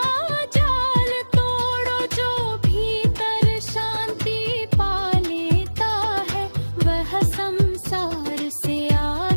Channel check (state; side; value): inverted; both; correlation -1.00